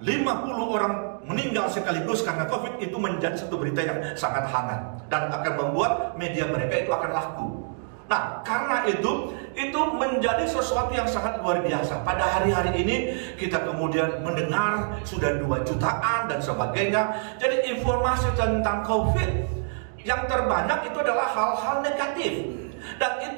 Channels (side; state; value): left; silent; digital silence